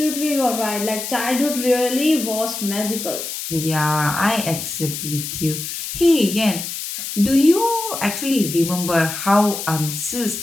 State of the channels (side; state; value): left; noise; hiss, 6 dB below the sound